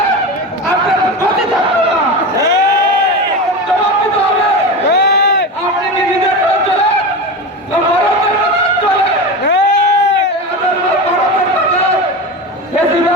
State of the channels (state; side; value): normal; both; correlation 0.23